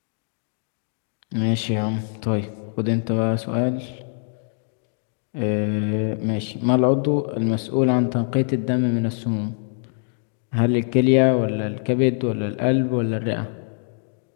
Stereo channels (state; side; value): silent; right; digital silence